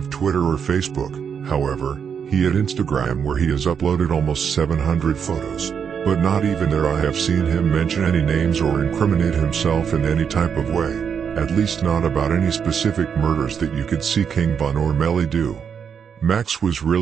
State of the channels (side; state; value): left; quieter; 7.2 dB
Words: Twitter or Facebook, however, he had Instagram where he has uploaded almost 700 photos, but not even there I have seen him mention any names or incriminate himself in any type of way, at least not about any specific murders that you could see King Von or Melly do. Maxx was